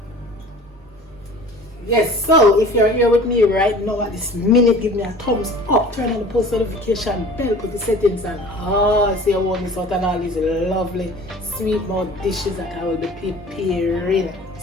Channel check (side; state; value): both; normal; correlation 0.44